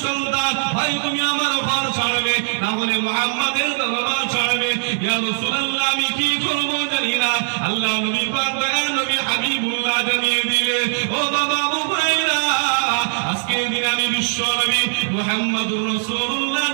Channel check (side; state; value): left; silent; digital silence